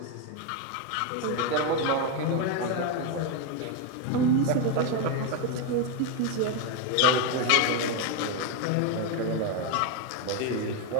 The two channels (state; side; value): different; both; correlation 0.02